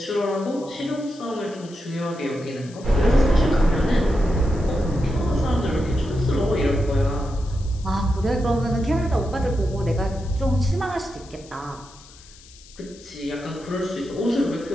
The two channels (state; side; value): noise; left; hiss, 22 dB below the sound